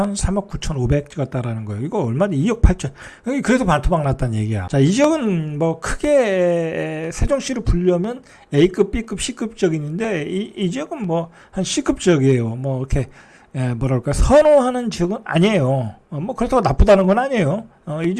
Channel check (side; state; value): both; identical; correlation 1.00